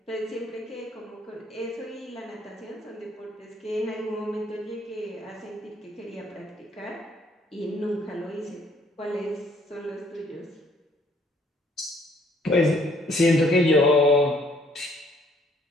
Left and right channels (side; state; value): both; normal; correlation 0.64